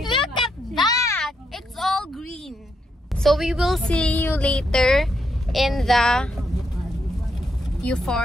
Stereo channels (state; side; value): normal; both; correlation 0.79